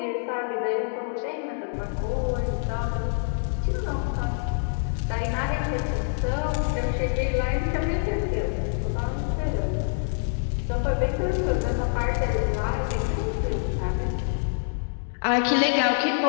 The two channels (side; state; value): right; silent; digital silence